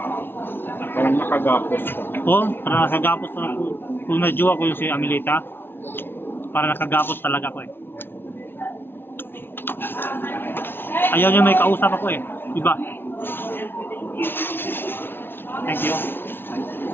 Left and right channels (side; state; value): right; late; 0.11 ms